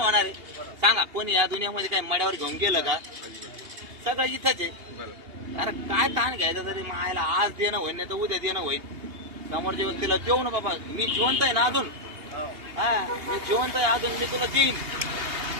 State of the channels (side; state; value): left; late; 2.8 ms